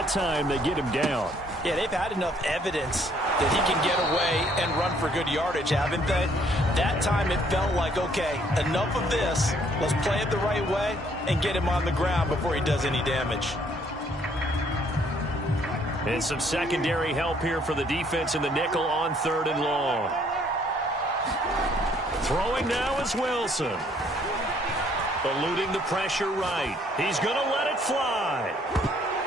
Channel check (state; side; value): normal; both; correlation 0.64